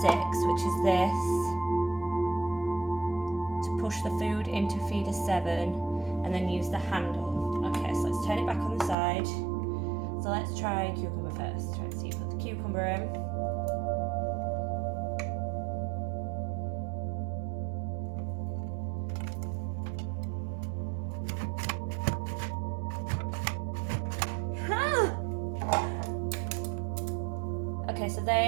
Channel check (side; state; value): left; drops out; at 9.0 s